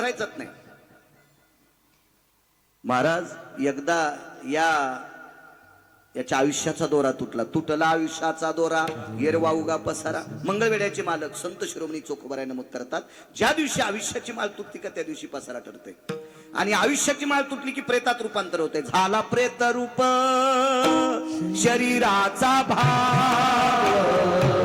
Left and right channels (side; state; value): both; identical; correlation 1.00